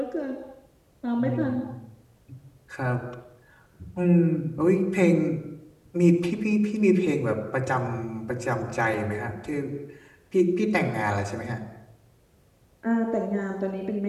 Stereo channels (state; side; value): identical; both; correlation 1.00